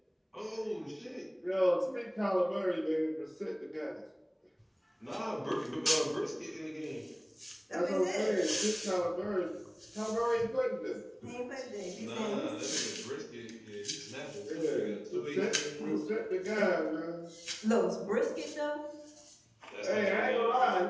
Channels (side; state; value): both; identical; correlation 1.00